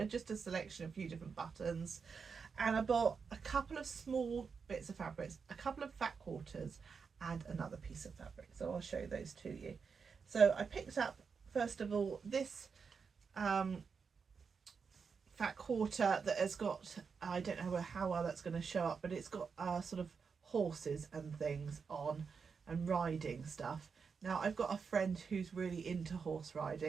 just a selection of a few different buttons. And I bought a couple of small bits of fabrics, a couple of fat quarters and another piece of fabric. So I'll show those to you. So I picked up, first of all, this fat quarter that has got, I don't know how well that's going to show up, but it's got sort of horses and things on and riding stuff. Now I've got a friend who's really into horse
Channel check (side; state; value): left; quieter; 5.6 dB